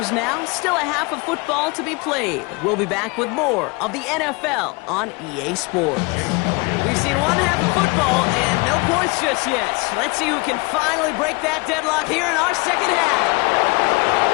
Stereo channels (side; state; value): right; quieter; 27.5 dB